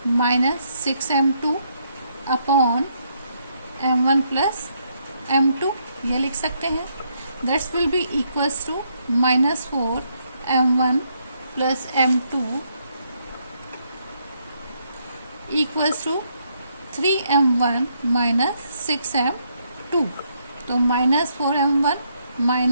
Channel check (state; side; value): inverted; both; correlation -0.74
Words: minus 6m2 upon m1 plus m2 ये लिख सकते हैं। That's will be equals to -4 m1 plus m2 equals to 3m1 minus 6m2। तो -4m1